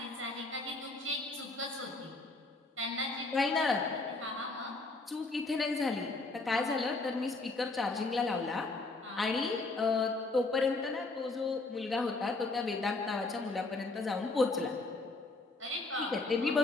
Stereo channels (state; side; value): quieter; right; 3.3 dB